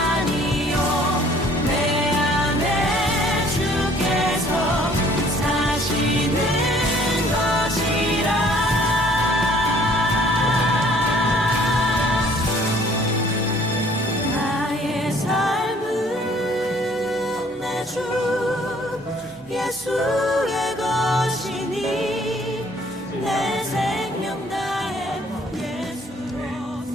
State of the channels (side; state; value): both; normal; correlation 0.58